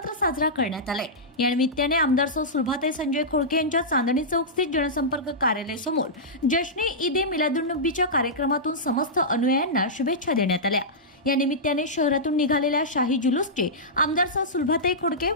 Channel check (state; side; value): normal; both; correlation -0.13